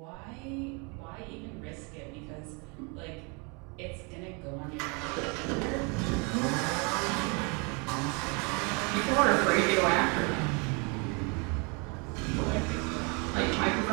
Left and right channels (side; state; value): left; quieter; 32.4 dB